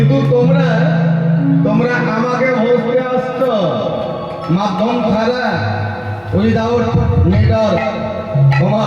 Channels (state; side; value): identical; both; correlation 1.00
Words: তোমরা আমাকে ভজতে আসছ মাধ্যম ছাড়া, উইদাউট নেটওয়ার্ক,